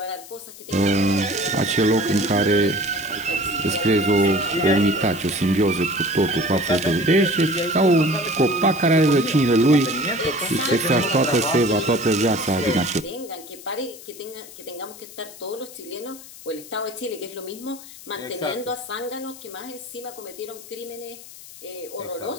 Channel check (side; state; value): left; noise; hiss, 17 dB below the sound